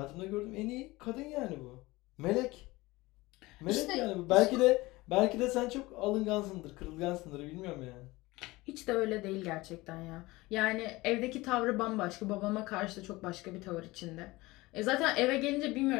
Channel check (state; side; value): quieter; right; 20.8 dB